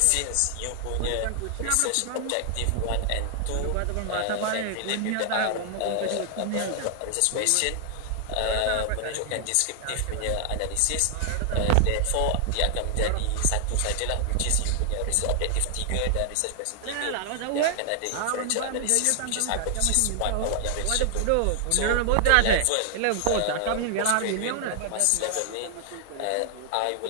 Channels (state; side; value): different; both; correlation 0.00